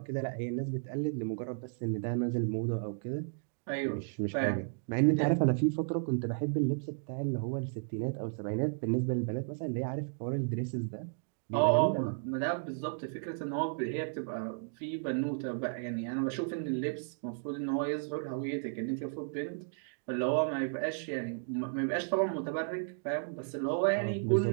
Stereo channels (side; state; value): left; silent; digital silence